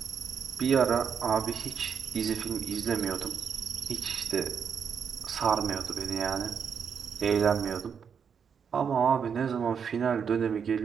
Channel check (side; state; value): left; quieter; 7.0 dB